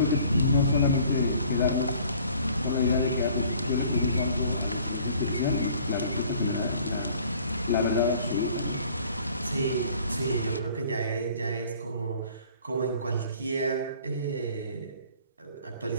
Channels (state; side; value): inverted; both; correlation -0.54